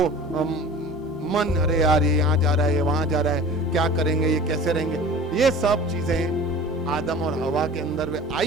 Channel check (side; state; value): both; normal; correlation 0.40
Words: मन, अरे यार ये यहाँ जा रहा है, ये वहां जा रहा है, क्या करेंगे, ये कैसे रहेंगे। ये सब चीजें आदम और हवा के अंदर वे